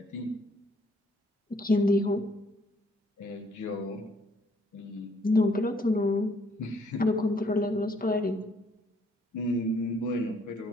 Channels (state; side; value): normal; both; correlation 0.66